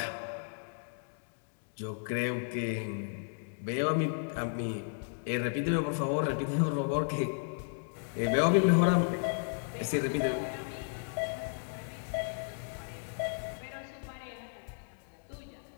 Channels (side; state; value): right; silent; digital silence